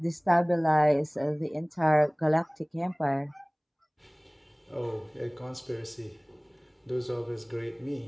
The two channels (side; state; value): both; identical; correlation 1.00